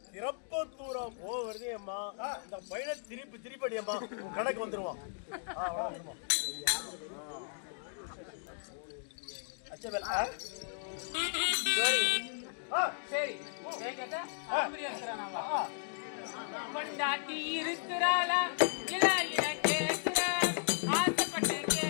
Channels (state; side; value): silent; right; digital silence